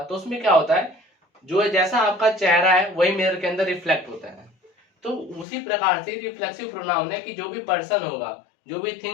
तो उसमें क्या होता है, जो जैसा आपका चेहरा है वही मिरर के अंदर रिफ्लेक्ट होता है। तो उसी प्रकार से रिफ्लेक्सिव प्रोनाउन है कि जो भी पर्सन होगा, जो भी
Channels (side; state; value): right; drops out; at 5.5 s